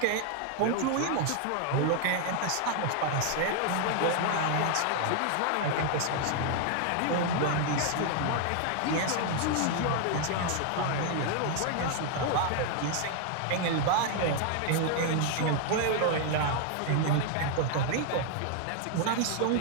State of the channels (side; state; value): both; different; correlation 0.00